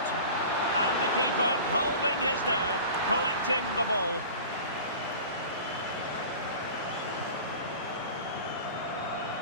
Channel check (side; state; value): both; inverted; correlation -0.38